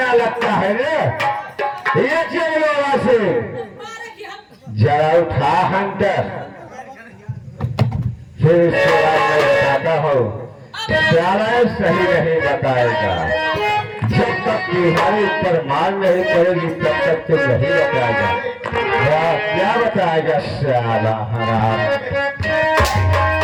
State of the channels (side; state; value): both; identical; correlation 1.00